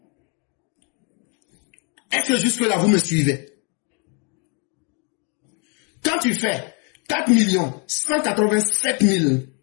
Est-ce que jusque-là, vous me suivez? Quand tu fais 4 187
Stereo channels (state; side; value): quieter; right; 35.9 dB